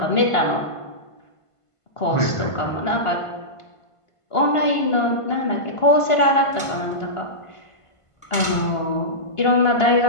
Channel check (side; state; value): right; late; 1.5 ms